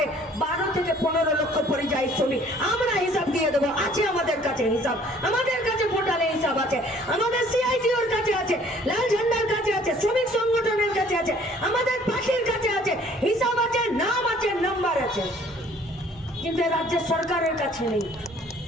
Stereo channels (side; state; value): both; normal; correlation 0.56